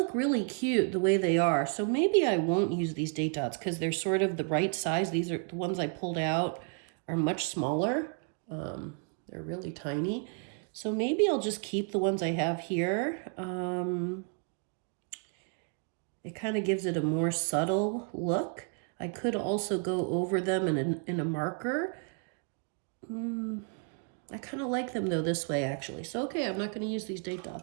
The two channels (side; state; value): left; quieter; 38.4 dB